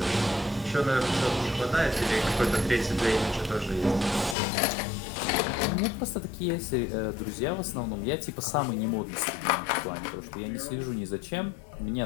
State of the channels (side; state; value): right; drops out; at 4.4 s